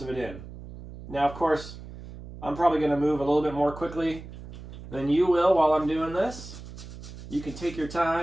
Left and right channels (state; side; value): noise; right; hum, 14 dB below the sound